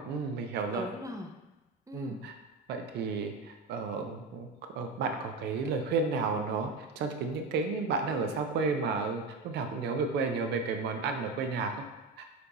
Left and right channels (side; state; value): left; quieter; 3.9 dB